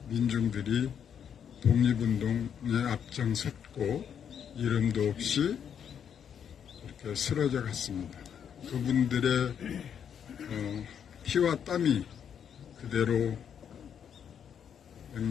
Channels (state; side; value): quieter; right; 8.2 dB